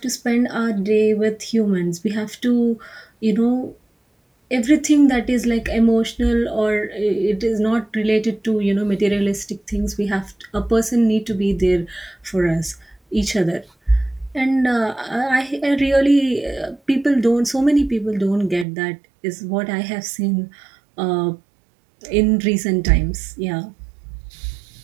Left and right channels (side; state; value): left; drops out; at 18.7 s